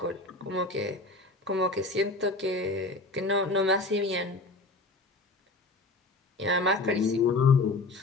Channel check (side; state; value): right; quieter; 3.1 dB